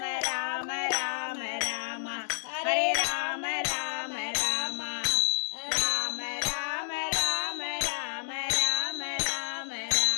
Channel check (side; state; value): right; silent; digital silence